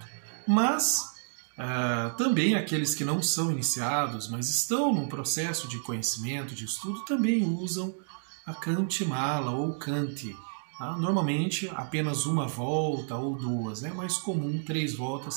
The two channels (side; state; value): left; silent; digital silence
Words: Mas também aqueles que não são iniciados, mas estão num processo de conhecimento, de estudo, também usam a Kantimala ou Kanti. Normalmente apenas uma volta ou 2, é mais comum 3